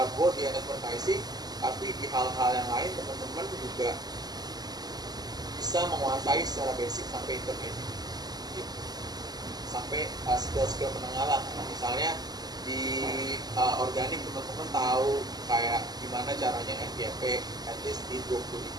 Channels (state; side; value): late; left; 0.20 ms